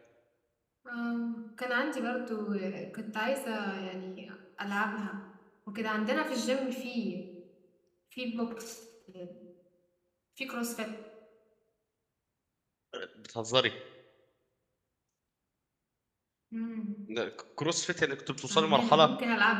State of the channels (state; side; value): identical; both; correlation 1.00